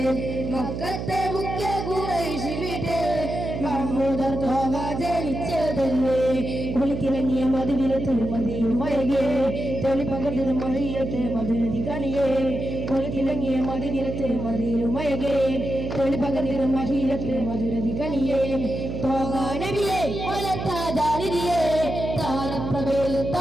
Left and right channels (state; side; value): noise; right; hum, 5 dB below the sound